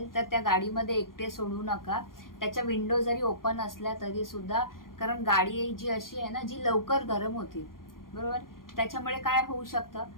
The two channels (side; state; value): right; late; 0.91 ms